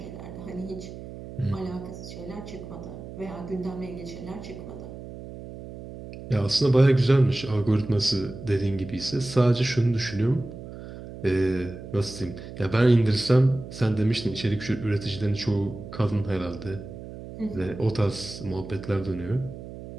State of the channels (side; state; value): right; noise; hum, 12 dB below the sound